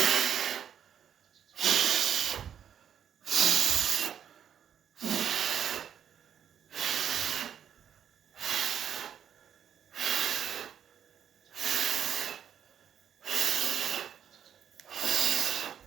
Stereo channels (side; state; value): left; quieter; 8.9 dB